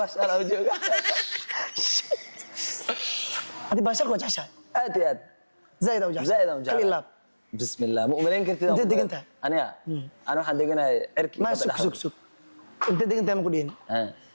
baashaalo u joogaa adi baashaal ku jeceshahay aad iyo aad zaid u jeceshahay kal ilaab bismillah ma umaleyn kartid inta degantahay aniga ana waxaan deganahay cirki ma sug inta degantahay ma ku dhiin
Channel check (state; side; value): inverted; both; correlation -1.00